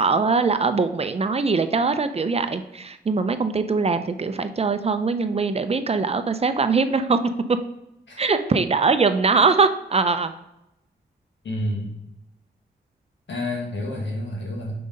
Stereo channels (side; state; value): left; quieter; 3.8 dB